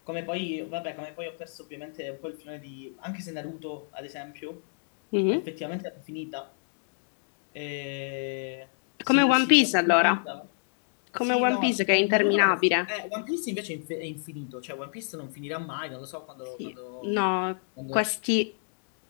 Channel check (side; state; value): right; silent; digital silence